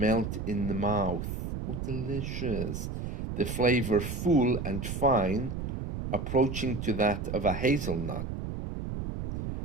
in the mouth. Oh, delicious. The flavor full and fine, approaching to that of a hazelnut.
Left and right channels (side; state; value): right; noise; rumble, 5 dB below the sound